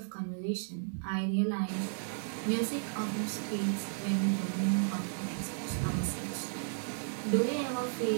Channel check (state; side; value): silent; left; digital silence